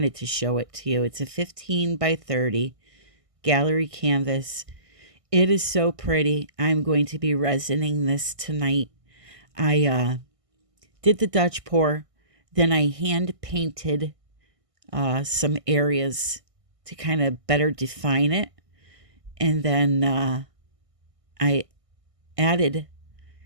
to show it to you. It's a 15 by 30 gallery canvas. It is so pretty. I'm going to be resining this tonight. I did the Dutch pour, then I hand painted some areas to kind of better define it. And then I added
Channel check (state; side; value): late; left; 1.5 ms